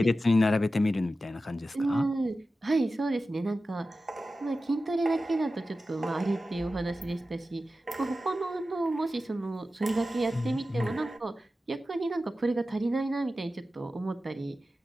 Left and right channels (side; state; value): both; normal; correlation 0.93